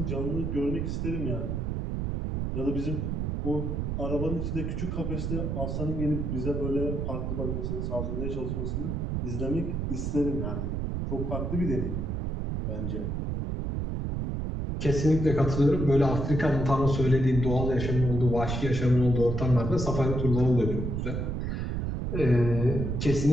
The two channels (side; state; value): right; noise; rumble, 1 dB below the sound